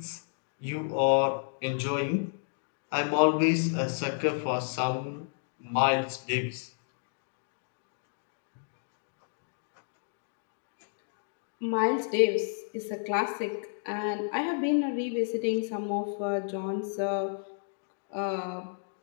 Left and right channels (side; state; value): right; silent; digital silence